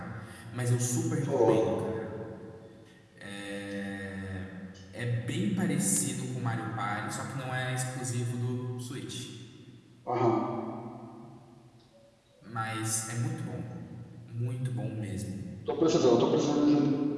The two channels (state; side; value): identical; both; correlation 1.00